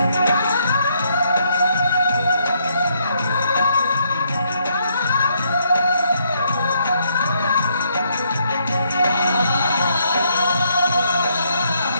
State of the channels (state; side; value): inverted; both; correlation -0.72